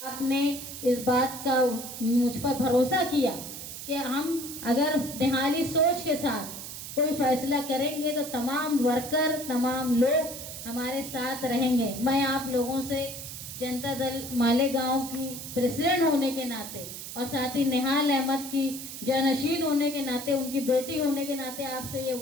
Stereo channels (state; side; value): noise; right; hiss, 9 dB below the sound